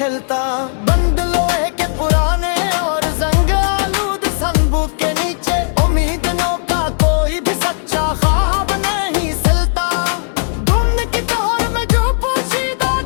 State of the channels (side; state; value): right; silent; digital silence